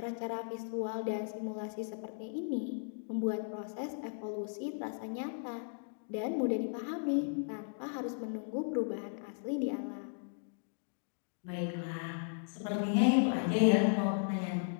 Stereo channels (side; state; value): right; silent; digital silence